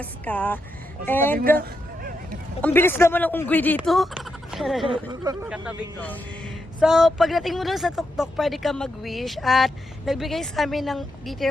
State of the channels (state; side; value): normal; both; correlation 0.83